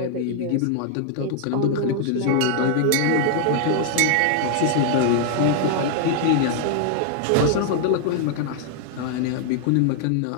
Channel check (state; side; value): different; both; correlation 0.00